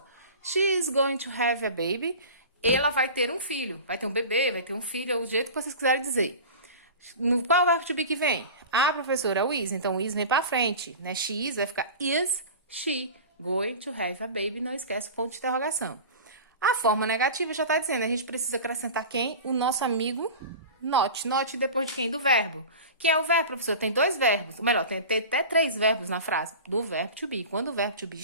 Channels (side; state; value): both; inverted; correlation -0.34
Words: She is going to have a baby. Ela vai ter um filho. Vai ter um bebê, vai ter um filho, é o jeito que vocês quiserem dizer. Qual é o verbo to be que vem? Ah, professora, é o is. Então, o is vem pra frente, né? She is vai ficar is she going to have a baby. Não esquece o ponto de interrogação. A forma negativa já tá dizendo. A gente precisa acrescentar quem? O nosso amigo not. Not depois de quem? Do verbo. Quem é o verbo, professor? Tem dois verbos. Ou melhor, tem até 3 verbos na frase. Do verbo to be. Quando o verbo to be